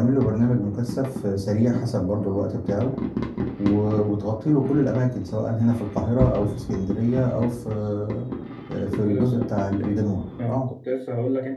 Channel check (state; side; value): identical; both; correlation 1.00